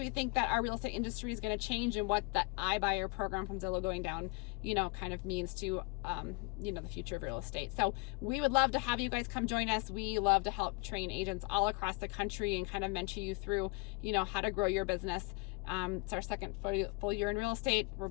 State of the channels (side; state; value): right; quieter; 28.2 dB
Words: think that our real estate industry is going to change, and what the iBuyer program from Zillow going down, you know, kind of means to, you know, the future of real estate. So we would love to have you guys come join us. We love to help train agents all across the country and kind of mentor you through, you know, how to grow your business. It's our second full year in real estate. We're